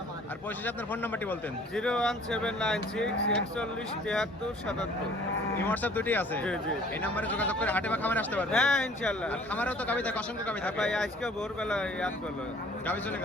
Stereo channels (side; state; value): both; normal; correlation 0.54